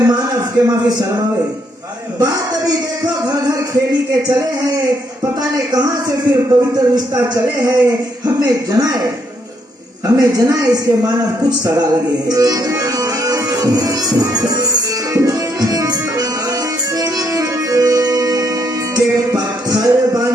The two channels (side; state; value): both; normal; correlation 0.74